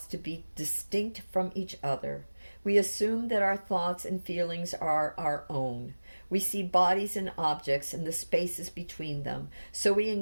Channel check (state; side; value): inverted; both; correlation -1.00